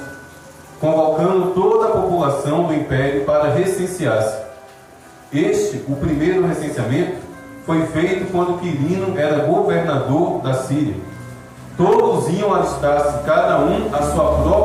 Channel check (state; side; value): identical; both; correlation 1.00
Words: convocando toda a população do império para recensear-se. O primeiro recenseamento, foi feito quando Quirino era governador da Síria. Todos iam alistar-se, cada um à sua